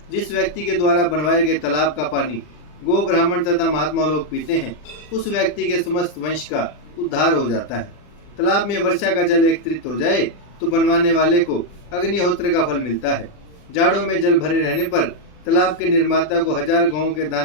जिस व्यक्ति के द्वारा बनवाए गए तालाब का पानी गो, ब्राह्मण तथा महात्मा लोग पीते हैं, उस व्यक्ति के समस्त वंश का उद्धार हो जाता है। तालाब में वर्षा का जल एकत्रित हो जाए तो बनवाने वाले को अग्निहोत्र का फल मिलता है। जाड़ों में जल भरे रहने पर तालाब के निर्माता को 1000 गौों के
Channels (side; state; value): right; late; 40 ms